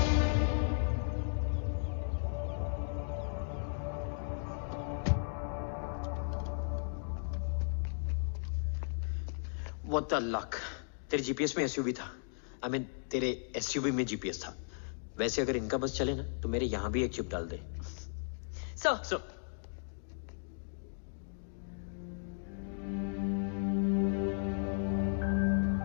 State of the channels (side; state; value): right; silent; digital silence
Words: What the luck? तेरे जीपीएस में एसयूवी था। आई मीन तेरे एसयूवी में जीपीएस था। वैसे अगर इनका बस चले ना तो मेरे यहां भी एक चिप डाल दे। सर,